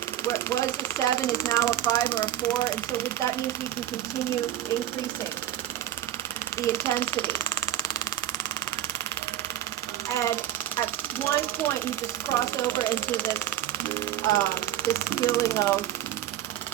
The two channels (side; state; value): left; quieter; 12.0 dB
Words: what was a 7 is now a 5 or a 4, and so that means we can continue increasing the intensity. And at one point, you just cross over into this feeling of,